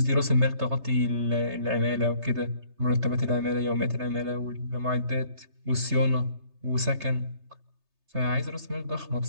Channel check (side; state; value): left; late; 3.3 ms